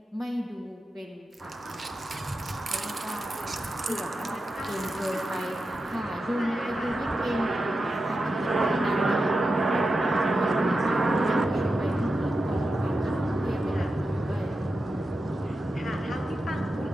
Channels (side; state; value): both; normal; correlation 0.90